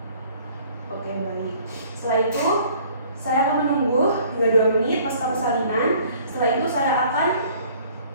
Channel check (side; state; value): both; inverted; correlation -0.55